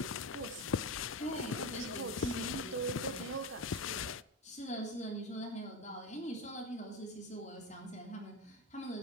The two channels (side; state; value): both; normal; correlation 0.20